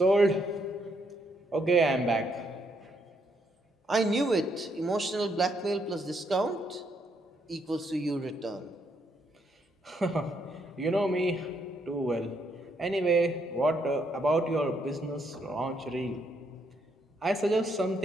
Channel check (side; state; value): both; normal; correlation 0.74